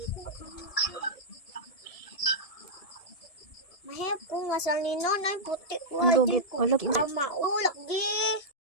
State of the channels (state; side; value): late; right; 1.7 ms